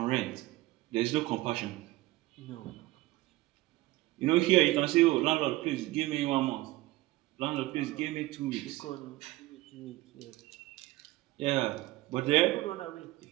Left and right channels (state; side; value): quieter; left; 18.5 dB